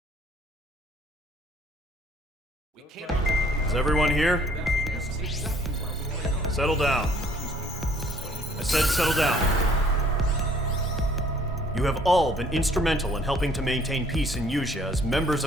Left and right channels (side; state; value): both; normal; correlation 0.59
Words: Is everyone here? Settle down. I said settle down. You have all been instrumental in helping to maintain peace in Usea as members